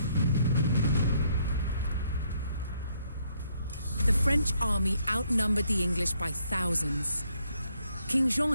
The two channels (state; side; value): inverted; both; correlation -0.72